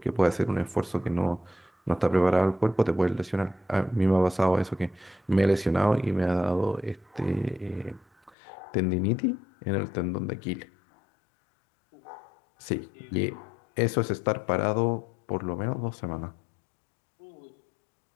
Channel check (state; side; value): drops out; right; at 8.3 s